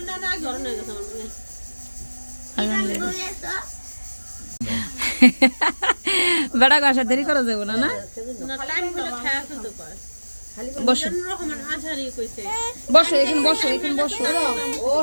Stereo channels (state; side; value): inverted; both; correlation -1.00